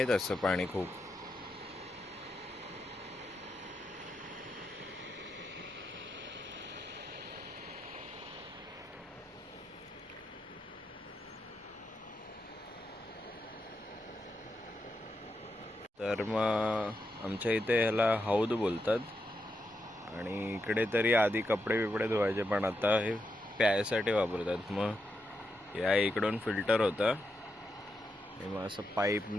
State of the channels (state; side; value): normal; both; correlation 0.85